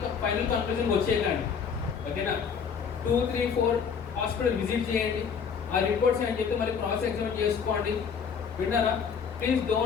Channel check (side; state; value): right; quieter; 6.5 dB